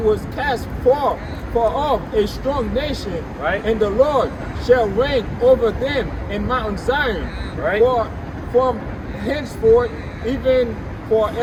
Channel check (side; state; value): both; identical; correlation 1.00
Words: cast far off a strong nation. Right. And the Lord shall reign over them in Mount Zion. Right. henceforth, even